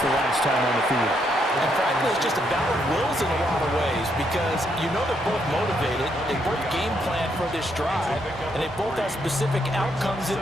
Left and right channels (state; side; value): normal; both; correlation 0.75